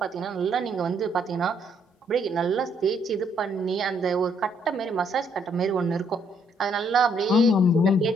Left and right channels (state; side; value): normal; both; correlation 0.70